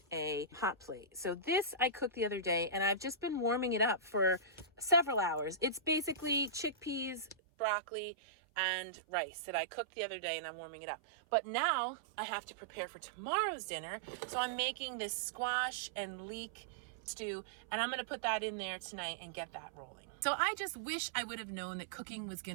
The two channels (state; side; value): drops out; left; at 7.4 s